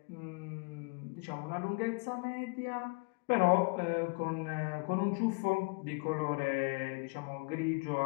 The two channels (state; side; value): quieter; right; 32.0 dB